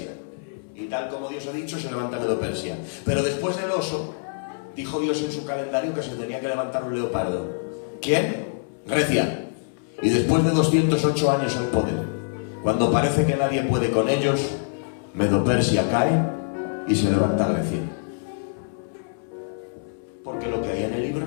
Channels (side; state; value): right; silent; 62 dB below the other